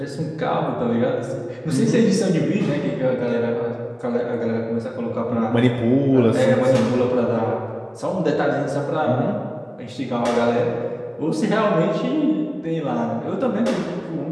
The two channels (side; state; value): both; identical; correlation 1.00